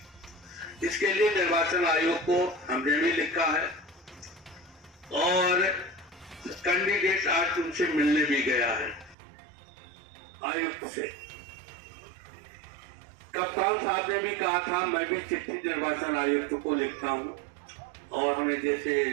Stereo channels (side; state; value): left; drops out; at 9.2 s